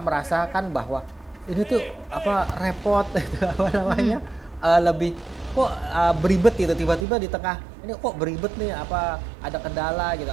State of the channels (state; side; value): drops out; left; at 7.1 s